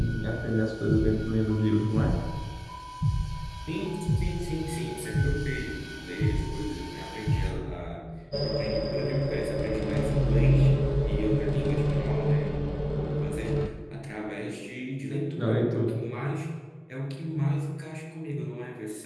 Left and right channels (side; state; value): both; identical; correlation 1.00